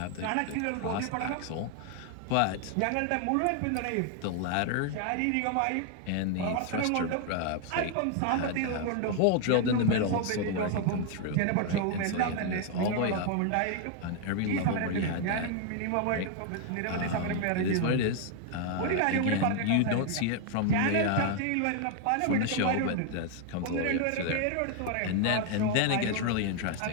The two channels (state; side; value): different; both; correlation 0.00